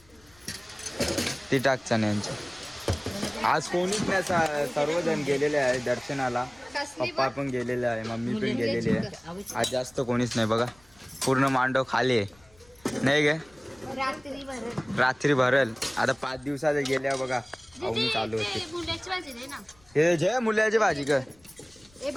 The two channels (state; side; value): noise; left; rumble, 29 dB below the sound